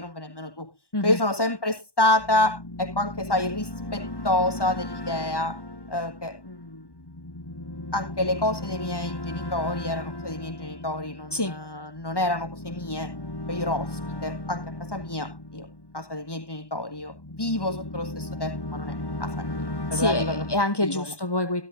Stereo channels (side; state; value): right; late; 1.1 ms